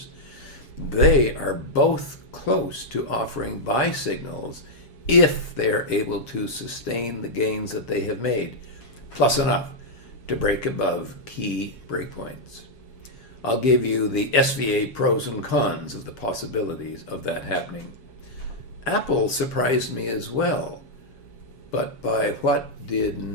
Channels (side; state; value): right; late; 7.3 ms